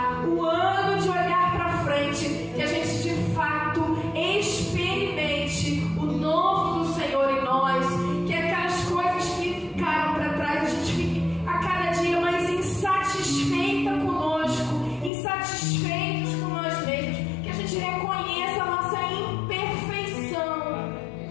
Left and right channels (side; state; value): right; drops out; at 15.1 s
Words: o ano de olhar pra frente, que a gente de fato experimente o novo do Senhor em nós, que aquelas coisas que ficaram para trás, a gente fique a cada dia mais insatisfeita conosco, insatisfeitos com nós mesmos, que a gente reconheça a nossa imperfeição,